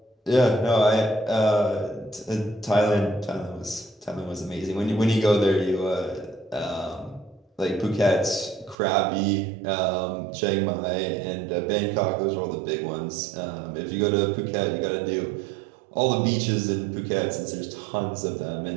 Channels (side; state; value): left; drops out; at 8.8 s